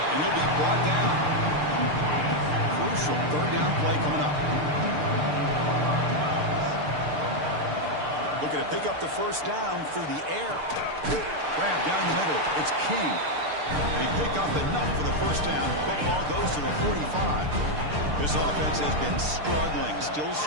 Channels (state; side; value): late; left; 6.7 ms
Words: And he'll be brought down. Crucial 3rd down play coming up. Looking to pick up the 1st down through the air. Grab down the middle. It's King. They pick up enough for the 1st down. Football goes to the 45. This offense has been struggling. Still